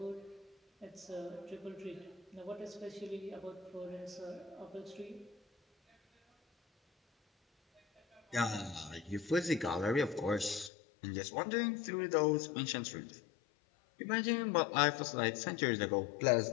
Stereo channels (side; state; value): right; drops out; at 10.7 s